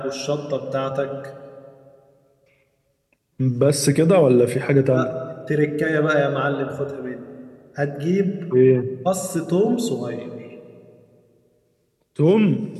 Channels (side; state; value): both; identical; correlation 1.00